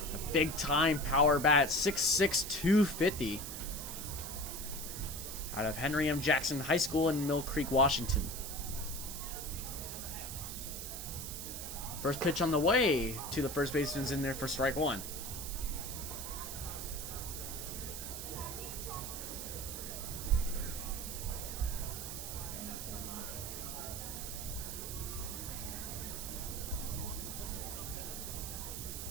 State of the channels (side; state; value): right; noise; hiss, 7 dB below the sound